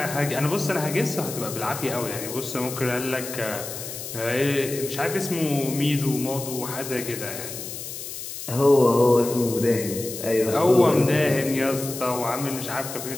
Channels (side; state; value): left; noise; hiss, 9 dB below the sound